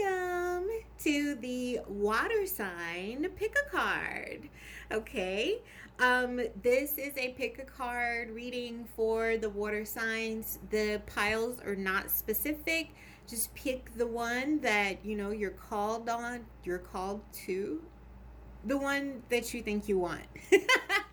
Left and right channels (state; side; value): identical; both; correlation 1.00